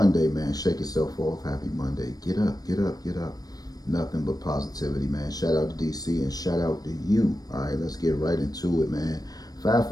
man. Shake yourself off. Happy Monday. Get up. Get up. Get up. Nothing but positivity, man. Shout out to DC and shout out to you. All right, let's get right into it, man.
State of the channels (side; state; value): right; late; 0.18 ms